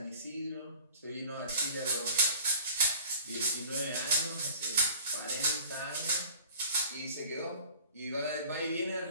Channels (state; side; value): inverted; both; correlation -0.45